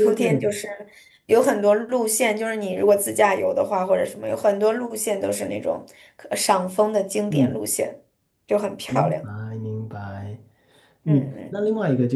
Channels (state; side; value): identical; both; correlation 1.00